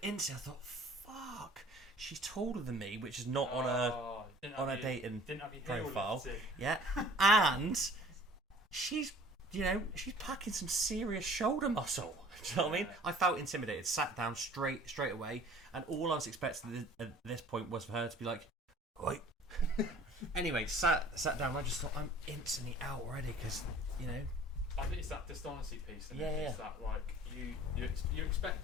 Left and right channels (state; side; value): normal; both; correlation 0.50